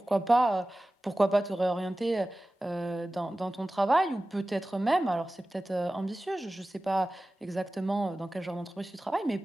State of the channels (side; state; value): both; normal; correlation 0.96